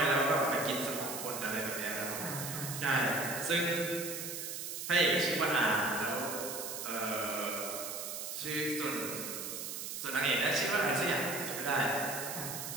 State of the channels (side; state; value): right; noise; hiss, 6 dB below the sound